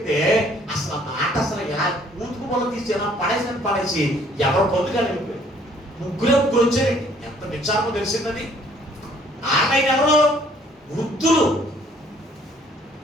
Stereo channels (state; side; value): normal; both; correlation 0.60